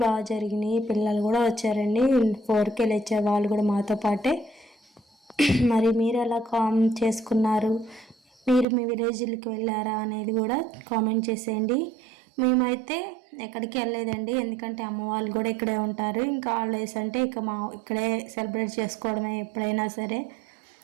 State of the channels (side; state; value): left; drops out; at 8.7 s